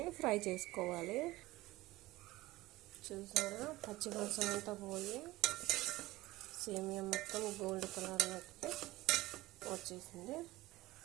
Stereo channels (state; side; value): quieter; left; 18.2 dB